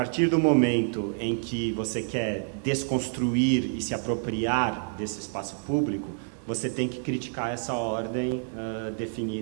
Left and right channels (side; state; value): left; silent; digital silence